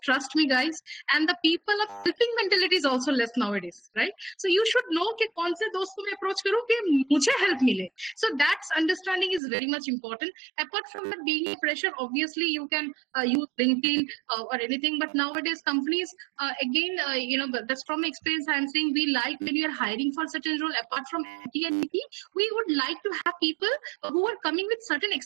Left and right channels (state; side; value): drops out; left; at 9.4 s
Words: trust me, guys. And the people of helping mentality is also less nowadays, right? So you should know कि कौन से दोस्त को मैं approach करूँ कि मुझे help मिले. So that's understanding is very much important. Apart from that, being a fresher, obviously you can use LinkedIn or anything, but nowadays companies, again, that's from experience I'm saying, we like when you are hiring for certain role, apart from TNT, we would like to have people who are coming with certain